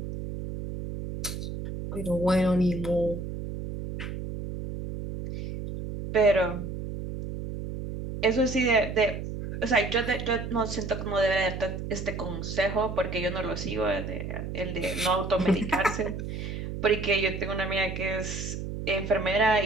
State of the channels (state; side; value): noise; right; hum, 6 dB below the sound